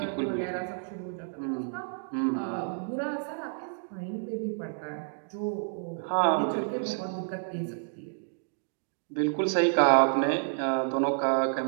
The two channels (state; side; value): silent; left; digital silence